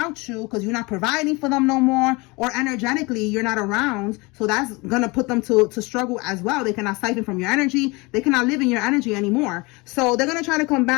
you because you're not providing for them no more, or energetically you're not around. So that's gonna put them to struggle as well. They cannot siphon from your energy. They cannot live in your energy anymore. So they're gonna try to come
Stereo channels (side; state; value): right; quieter; 25.7 dB